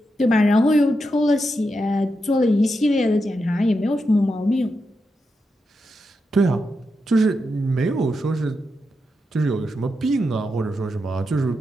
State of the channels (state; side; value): normal; both; correlation 0.86